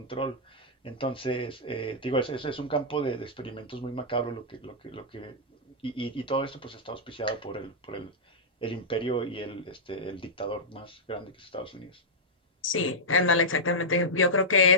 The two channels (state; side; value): normal; both; correlation -0.09